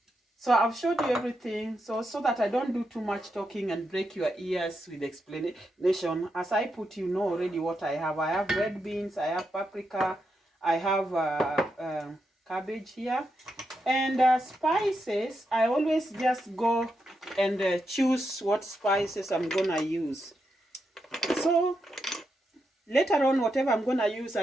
So I've showed you everything, so that I don't do too much talking and break your ears with explanation. As I put, you know already what I have. I have red beans, I have paprika, I have cabbage here. And spices, I always just go and choose what spices I'm gonna use. So later on, whatever I'm gonna use,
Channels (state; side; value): normal; both; correlation 0.84